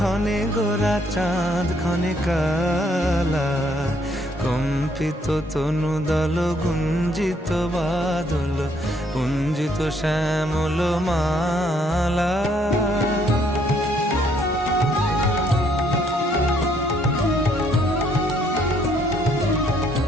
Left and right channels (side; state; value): both; normal; correlation 0.68